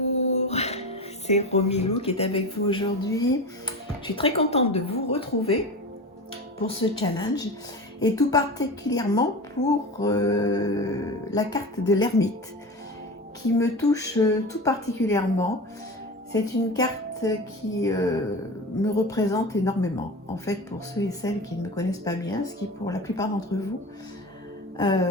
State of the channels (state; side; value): normal; both; correlation 0.28